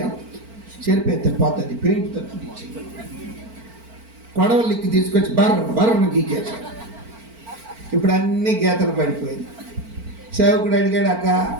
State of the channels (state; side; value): late; left; 4.4 ms